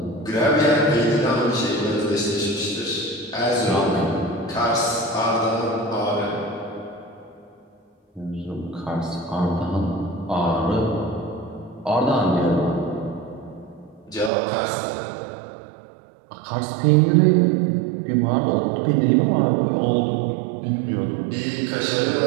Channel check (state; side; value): drops out; left; at 14.3 s